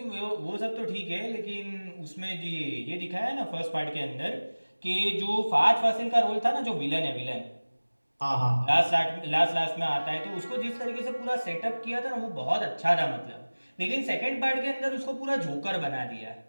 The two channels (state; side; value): inverted; both; correlation -1.00